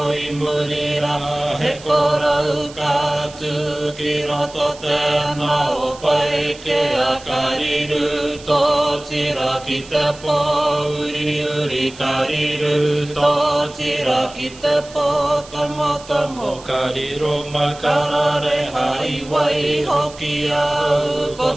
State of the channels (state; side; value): noise; right; hiss, 19 dB below the sound